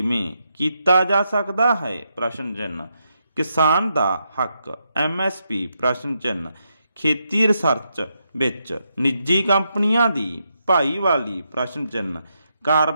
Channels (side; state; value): both; inverted; correlation -0.82